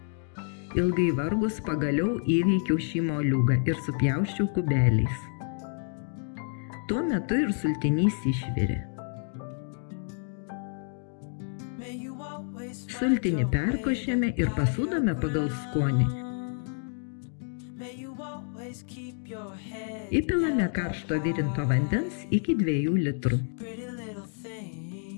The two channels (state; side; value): silent; right; 59 dB below the other